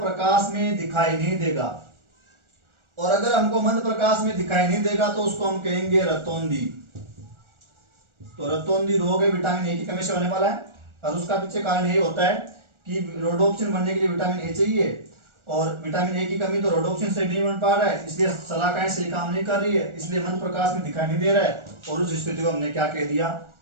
में दिखाई नहीं देगा। और अगर हमको मंद प्रकाश में दिखाई नहीं देगा तो उसको हम कहेंगे रतौंधी। तो रतौंधी रोग है विटामिन ए की कमी से होने वाला है, और उसका पीछे कारण यही होता है कि रोडोप्सिन बनने के लिए विटामिन ए चाहिए, और विटामिन ए की कमी तो रोडोप्सिन से नहीं बन पा रहा है, इसलिए सलाखाएं सही काम नहीं कर रही है, इसलिए मंद प्रकाश में दिखाई नहीं दे रहा है, और उस स्थिति को हमने क्या कह दिया,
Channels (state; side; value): late; left; 1.4 ms